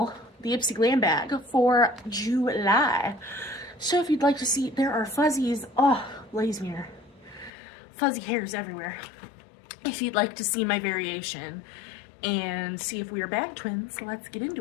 the Ipsy Glam Bag for July. So if you'd like to see, there are fuzzies, oh, blaze mirror, fuzzy hairs everywhere. If you'd like to see my variation and see if we are bag twins, let's get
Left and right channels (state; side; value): drops out; right; at 7.5 s